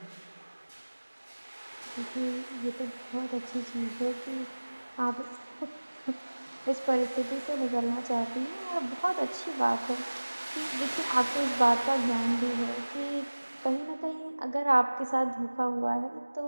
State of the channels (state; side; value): inverted; both; correlation -1.00